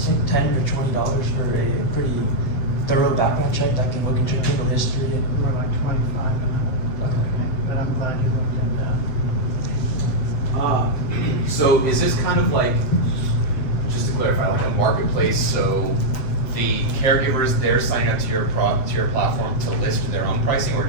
like $10 or $20 for a pretty thorough background check that can look into your criminal history. More like 25 an hour. Okay. But I'm glad you looked at that. So is this kind of like, just to clarify, like a marketplace? So the caregivers, they're signing up to your platform to list their own pricing, or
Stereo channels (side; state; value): right; late; 7.8 ms